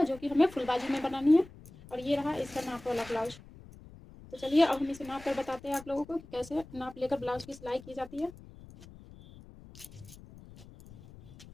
जो कि हमें फुल बाजू में बनानी है, और ये रहा इसका नाप वाला ब्लाउज। तो चलिए अब हम इसे नाप कर बताते हैं आप लोगों को कि कैसे नाप लेकर ब्लाउज की सिलाई की जाती है।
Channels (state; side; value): noise; left; rumble, 19 dB below the sound